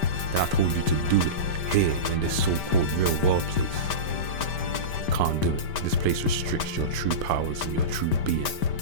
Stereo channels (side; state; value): right; late; 5.1 ms